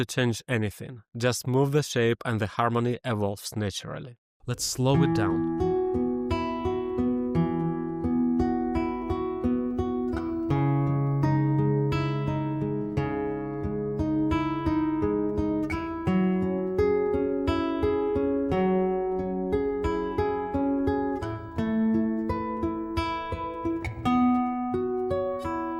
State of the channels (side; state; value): both; identical; correlation 1.00